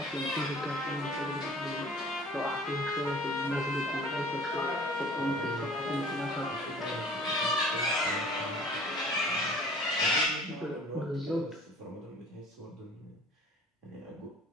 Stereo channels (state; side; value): normal; both; correlation 0.48